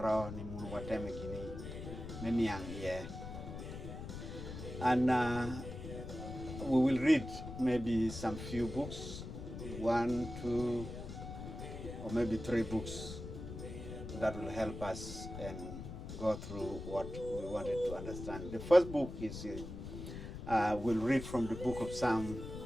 ni munu wateme gini meniang ye. And we will read maybe some few books, 1, 2, or maybe 3 books that will help us and go through what we wanted to understand. The first book is we'll read from the book of Psalm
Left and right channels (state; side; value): noise; left; rumble, 9 dB below the sound